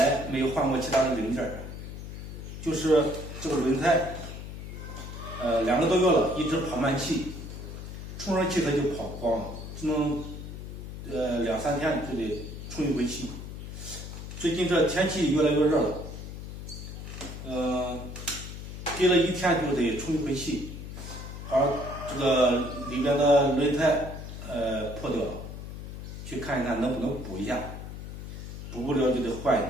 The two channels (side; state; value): left; noise; hum, 9 dB below the sound